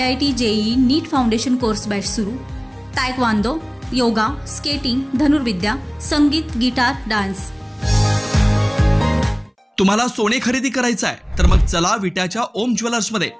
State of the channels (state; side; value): identical; both; correlation 1.00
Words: JEE, नीट फाउंडेशन कोर्स बॅच सुरू। तायक्वांदो, योगा, स्केटिंग, धनुर्विद्या, संगीत, गिटार, डान्स। तुम्हाला सोने खरेदी करायचं आहे तर मग चला विट्याच्या ओम ज्वेलर्स मध्ये।